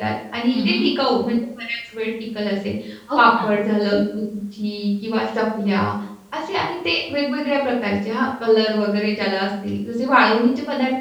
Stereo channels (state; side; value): identical; both; correlation 1.00